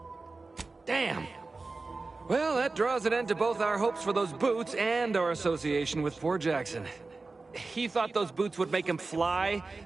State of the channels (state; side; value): quieter; left; 3.7 dB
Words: Damn. Well, that draws an end to both our hopes for those boots and our association with poor Jackson. He thought those boots would make him fly,